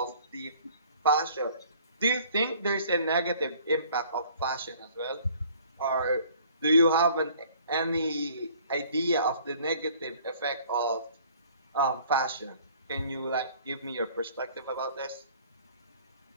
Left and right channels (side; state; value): both; inverted; correlation -0.55